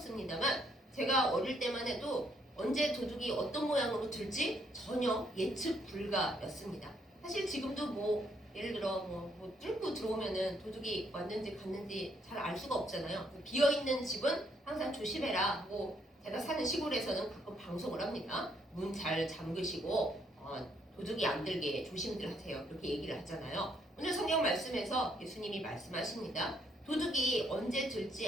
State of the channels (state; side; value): normal; both; correlation 0.71